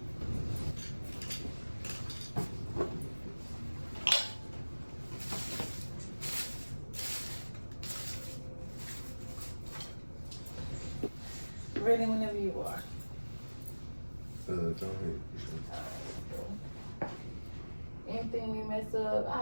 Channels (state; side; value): inverted; both; correlation -1.00